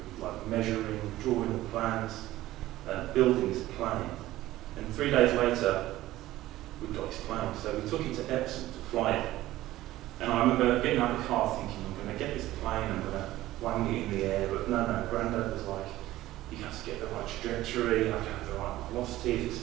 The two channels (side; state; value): left; quieter; 15.8 dB